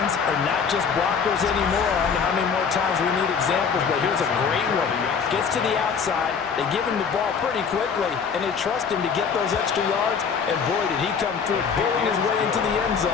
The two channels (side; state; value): right; quieter; 6.2 dB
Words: are not just blockers anymore. I don't know how many more times we need examples, but here's a great one. Gets to the outside, they give him the ball pretty quickly, and they trust him to get those extra yards, and boy, did he come through, bulling his way into the end